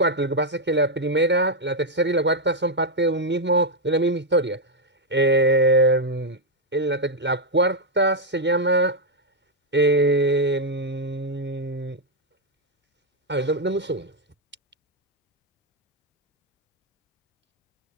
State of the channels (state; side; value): normal; both; correlation 0.00